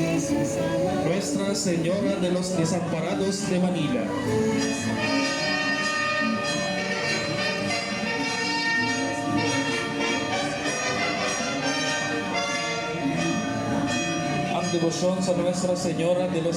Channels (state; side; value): identical; both; correlation 1.00